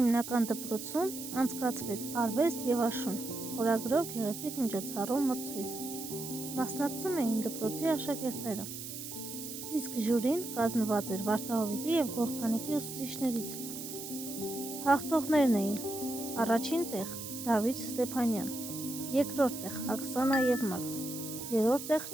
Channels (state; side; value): noise; right; hiss, 9 dB below the sound